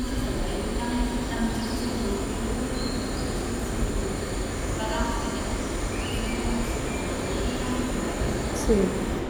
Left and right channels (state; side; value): identical; both; correlation 1.00